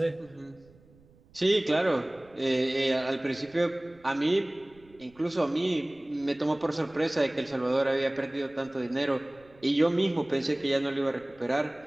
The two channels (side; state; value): right; noise; rumble, 28 dB below the sound